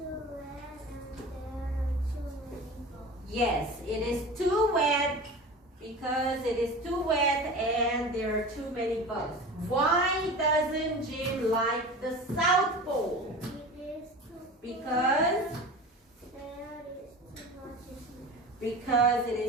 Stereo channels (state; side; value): normal; both; correlation 0.34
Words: Yes, it is too wet. Because it is too wet and there are too many bugs. Why doesn't Jim like the South Pole? Because it